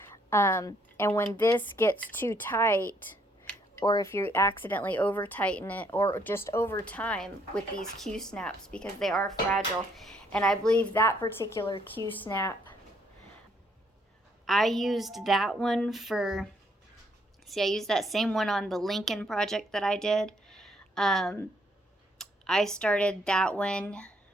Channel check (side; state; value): both; normal; correlation 0.69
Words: And when this gets too tight, or if you accidentally over tighten it, or just over time with these Q snaps, because they are fragile. And I believe that particular Q snap, I used that one I used that same one on the Lincoln project that I did. I started that one